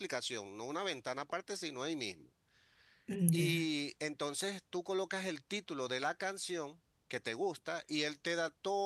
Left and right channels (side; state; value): both; identical; correlation 1.00